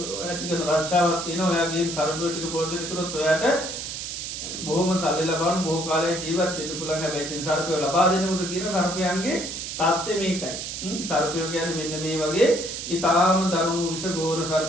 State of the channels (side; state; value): right; noise; hiss, 6 dB below the sound